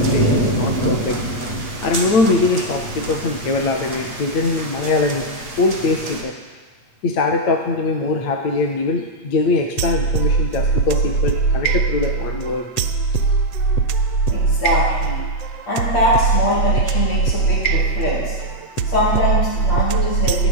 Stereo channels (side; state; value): right; late; 8.3 ms